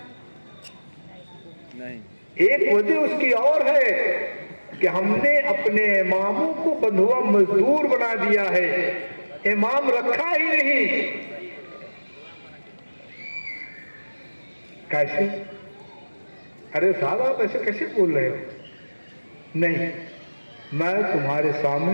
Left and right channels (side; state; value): both; inverted; correlation -1.00